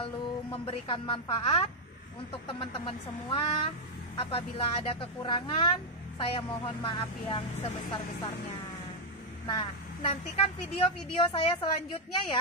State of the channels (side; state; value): both; normal; correlation -0.01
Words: memberikan manfaat untuk teman-teman semua. Apabila ada kekurangan, saya mohon maaf yang sebesar-besarnya. Nah, nantikan video-video saya selanjutnya